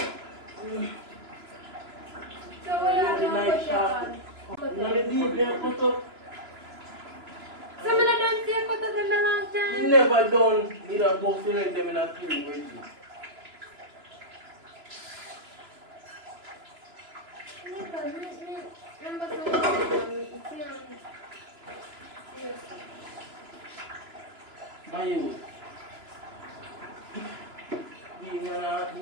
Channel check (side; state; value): left; late; 3.0 ms